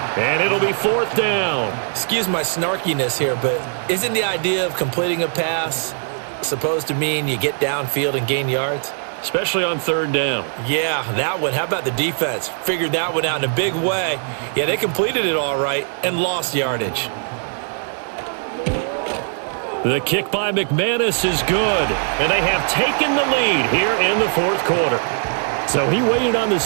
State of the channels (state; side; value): silent; left; digital silence